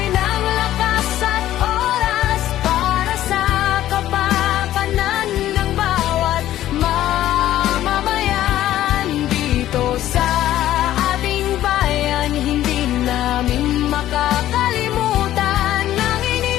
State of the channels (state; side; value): quieter; right; 13.2 dB